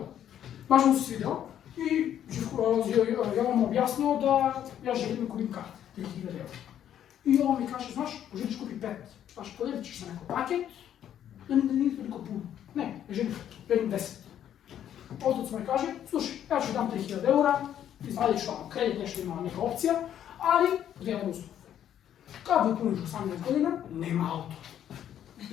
Baš mu se svidio i Jovan mu objasnio da ja želim da kupim karte, 3.000 €. I Jovan mi kaže, znaš, želiš kupi 5, znaš, podijelit ćeš se neko paket, da nije toliko puno. Ne, želim 10. Otac mi kaže, slušaj, ja ću dam 3.000 €, izvadit ću tamo kredit, nešto ima neka opcija, ali jedan uslov. Kad mi puniš 18 godina, nema auto.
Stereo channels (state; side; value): quieter; right; 10.3 dB